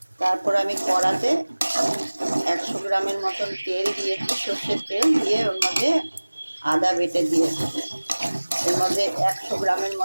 তারপর আমি কড়াতে 100 গ্রামের মতন তেল দিয়েছি, সর্ষের তেল দিয়ে ওর মধ্যে আদা বেটে দিয়েছি। এর মধ্যে 100 গ্রামের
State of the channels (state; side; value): inverted; both; correlation -1.00